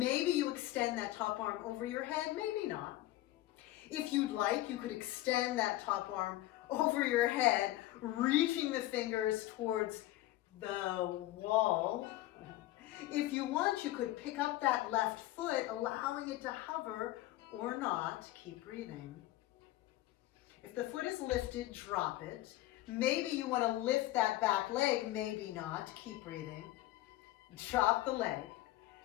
you extend that top arm over your head, maybe not. If you'd like, you could extend that top arm over your head, reaching the fingers towards the wall. If you want, you could pick up that left foot, allowing it to hover or not. Keep breathing. If the foot is lifted, drop it. Maybe you want to lift that back leg, maybe not. Keep breathing. Drop the leg.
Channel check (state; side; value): quieter; right; 16.1 dB